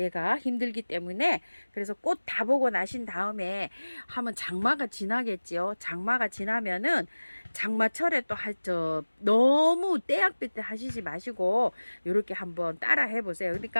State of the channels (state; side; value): inverted; both; correlation -1.00